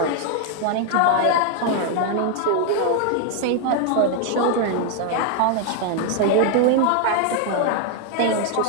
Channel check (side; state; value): both; different; correlation 0.00